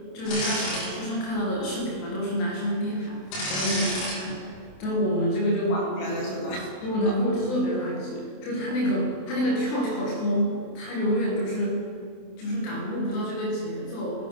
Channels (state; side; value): late; right; 27 ms